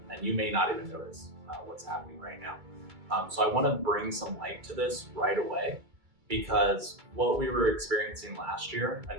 and you may not even notice what's happening right now. So I want to bring some light to this right away, because what we were experiencing last year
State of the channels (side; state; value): left; late; 2.2 ms